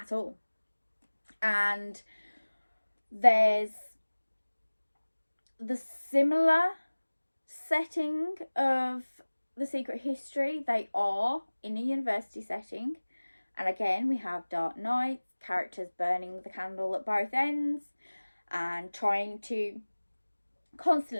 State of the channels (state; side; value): inverted; both; correlation -1.00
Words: all. And there's the similar setting of The Secret History. They are in a university setting. And again, we have dark nights, characters burning the candle at both ends and trying to